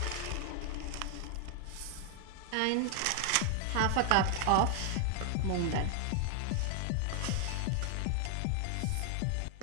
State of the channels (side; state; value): both; different; correlation 0.00